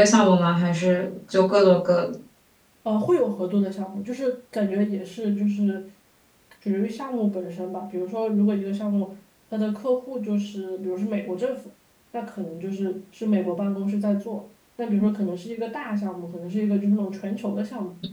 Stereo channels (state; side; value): identical; both; correlation 1.00